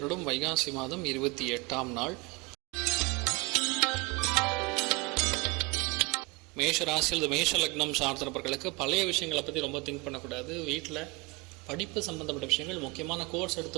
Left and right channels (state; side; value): quieter; left; 26.0 dB